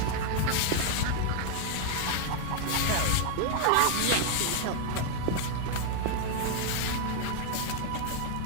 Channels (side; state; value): both; different; correlation 0.01